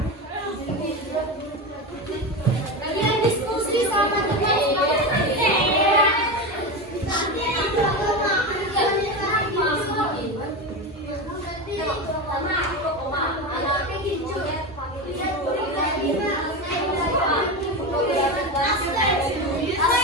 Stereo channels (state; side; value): normal; both; correlation 0.19